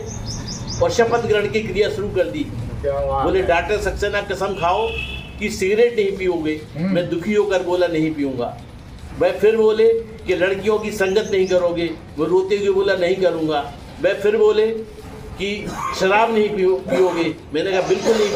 और शपथ ग्रहण की क्रिया शुरू कर दी। बोले डॉक्टर सक्सेना कसम खाओ कि सिगरेट नहीं पियोगे। मैं दुखी होकर बोला नहीं पीऊंगा। वह फिर बोले कि लड़कियों की संगत नहीं करोगे। वो रोते हुए बोला नहीं करूंगा। वह फिर बोले कि शराब नहीं पियोगे। मैंने कहा बिल्कुल नहीं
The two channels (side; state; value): both; identical; correlation 1.00